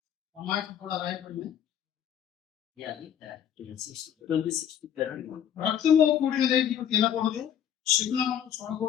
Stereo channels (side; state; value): right; quieter; 9.4 dB